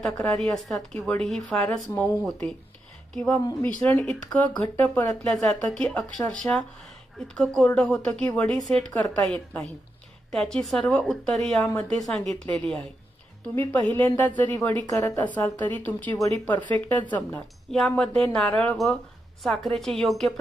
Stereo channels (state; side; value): normal; both; correlation 0.85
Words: तक्रारी असतात की वडी ही फारच मऊ होते किंवा मिश्रण इतकं घट्ट परतलं जातं की अक्षरशः इतकं कोरडं होतं की वडी सेट करता येत नाही. त्याची सर्व उत्तरे यामध्ये सांगितलेली आहे. तुम्ही पहिल्यांदाच जरी वडी करत असाल तरी तुमची वडी परफेक्टच जमणार. यामध्ये नारळ व साखरेचे योग्य